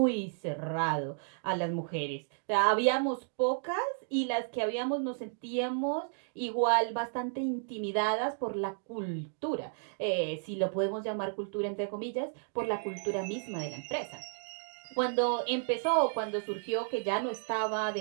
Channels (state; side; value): silent; left; digital silence